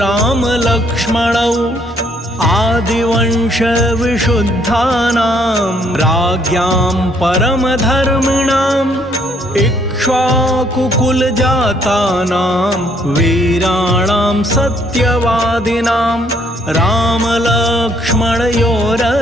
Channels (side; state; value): both; normal; correlation 0.67